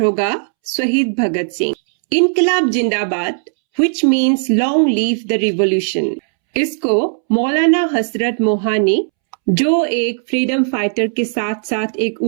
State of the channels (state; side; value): silent; left; 69 dB below the other